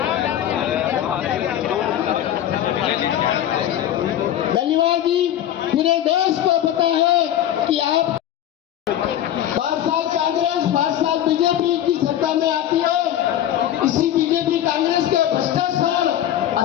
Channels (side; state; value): right; quieter; 11.4 dB